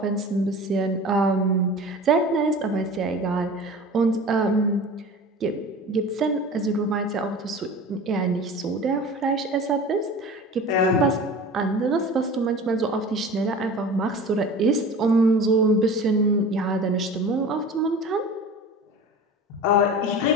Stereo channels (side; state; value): both; normal; correlation 0.37